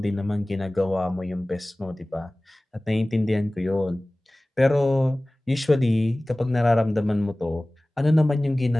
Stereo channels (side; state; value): both; normal; correlation 0.98